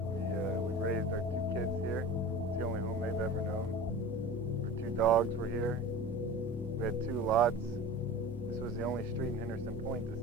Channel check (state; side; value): noise; left; hum, 14 dB below the sound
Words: We raised our 2 kids here. It's the only home they've ever known. Our 2 dogs were here. We had 2 lots. This was the only street in Henderson Point that